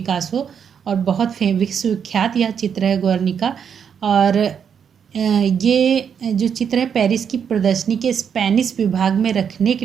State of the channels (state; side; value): quieter; left; 7.5 dB